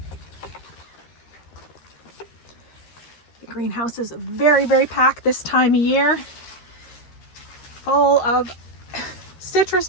The greenhouse is very, very packed this time of year, full of citrus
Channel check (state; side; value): late; right; 13 ms